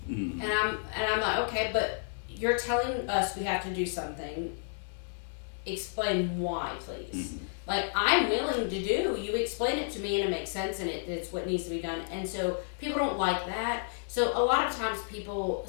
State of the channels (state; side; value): silent; right; digital silence